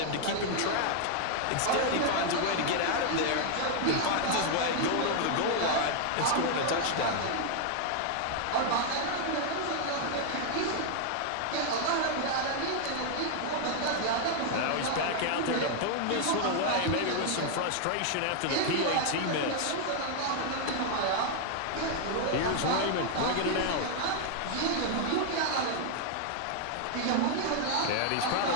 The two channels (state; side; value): different; both; correlation 0.00